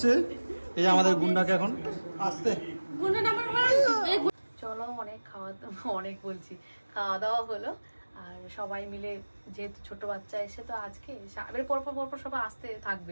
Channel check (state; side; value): inverted; both; correlation -1.00